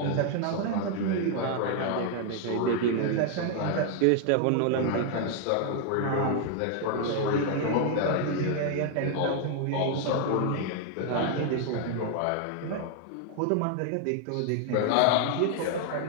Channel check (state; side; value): different; both; correlation 0.00